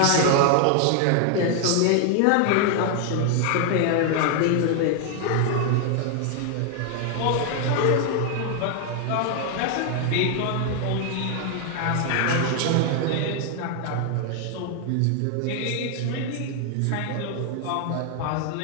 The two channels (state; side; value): different; both; correlation 0.00